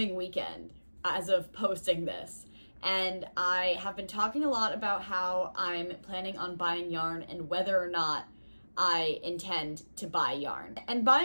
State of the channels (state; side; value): inverted; both; correlation -1.00